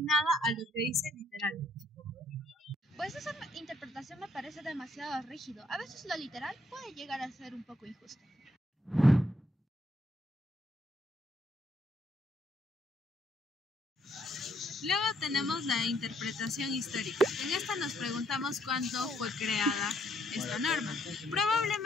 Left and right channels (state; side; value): normal; both; correlation 0.70